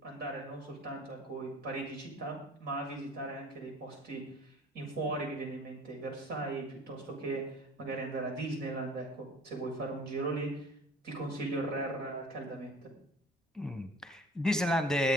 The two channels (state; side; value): normal; both; correlation 0.48